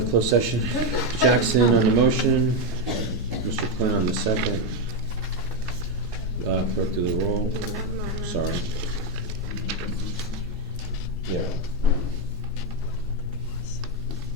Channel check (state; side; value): normal; both; correlation 0.05